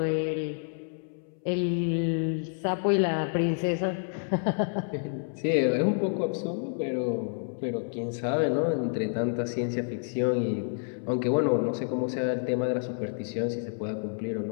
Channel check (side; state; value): right; silent; 59 dB below the other